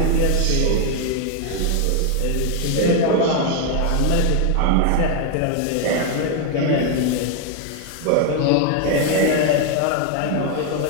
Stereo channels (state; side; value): different; both; correlation 0.01